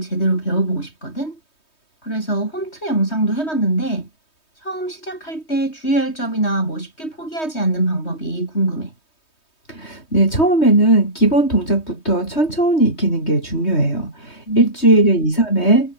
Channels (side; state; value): right; late; 3.2 ms